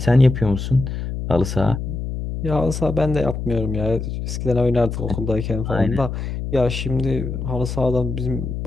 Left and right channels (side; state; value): left; noise; hum, 5 dB below the sound